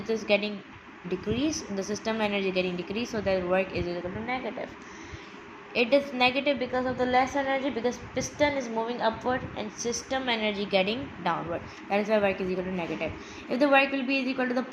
is getting decreased, the system energy getting decreased, so that work is equal to negative. It is negative because of the less energy, because piston is moving upward and system energy getting downward. That is why work is equal to negative. If the work will be equal to the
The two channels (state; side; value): identical; both; correlation 1.00